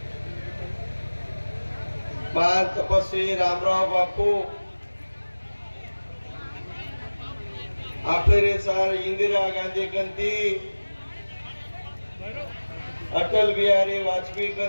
महान तपस्वी रामराव बापू आपले सार इंदिरा गांधी कंती अटल बिहारी वाजपेयी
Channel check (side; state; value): both; inverted; correlation -1.00